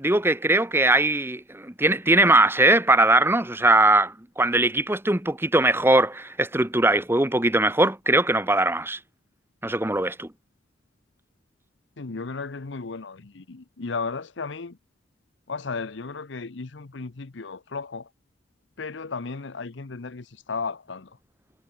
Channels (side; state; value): both; normal; correlation 0.49